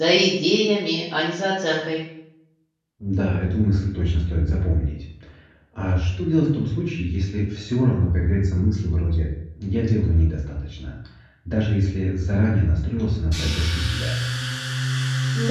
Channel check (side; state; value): both; identical; correlation 1.00